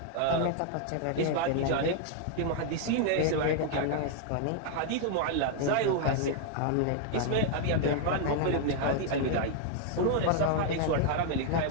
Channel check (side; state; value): both; different; correlation 0.00